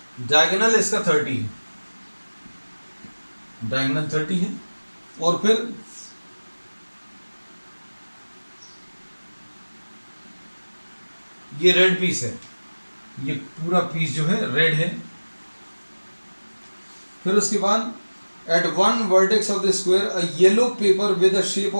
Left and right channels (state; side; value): inverted; both; correlation -1.00